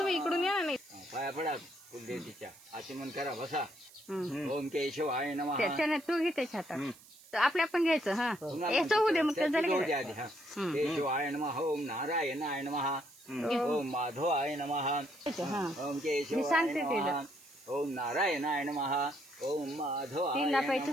इकडून या ना. पाया पडा कुलदेवतीच्या, आचमन करा, बसा. ओम केशवाय नमः. त्याच्याने तू घे त्याच्या हातात, आपल्या पण घ्यायचं. हा याचं होऊ दे, मग त्याचं केशवाय नमः. ओम नारायणाय नमः. ओम माधवाय नमः. ओम केशवाय नमः. ओम नारायणाय नमः. ओम माधवाय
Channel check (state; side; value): noise; right; hiss, 23 dB below the sound